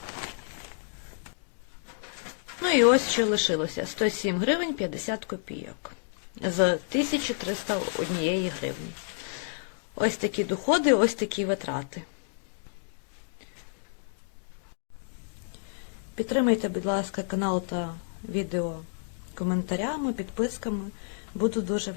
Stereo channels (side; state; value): right; silent; digital silence